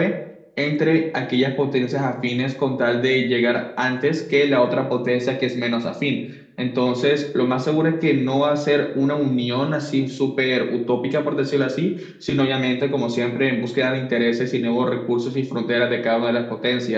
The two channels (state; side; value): identical; both; correlation 1.00